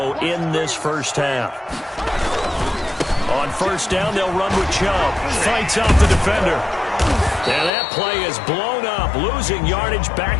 in this 1st half. On 1st down, they'll run with Chubb. Fights off the defender. And that play is blown up, losing yardage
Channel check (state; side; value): drops out; right; at 7.7 s